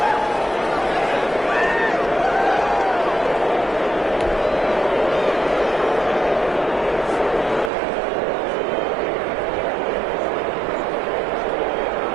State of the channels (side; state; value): left; drops out; at 7.7 s